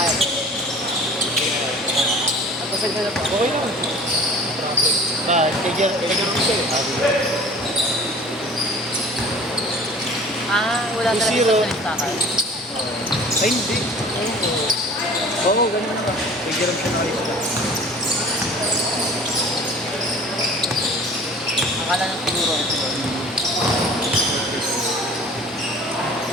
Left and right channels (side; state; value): both; normal; correlation 0.45